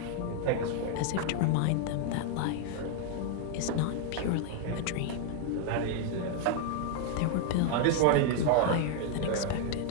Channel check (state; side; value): different; both; correlation 0.00